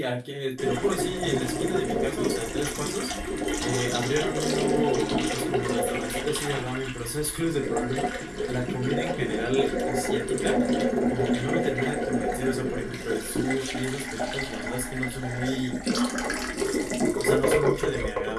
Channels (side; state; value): both; identical; correlation 1.00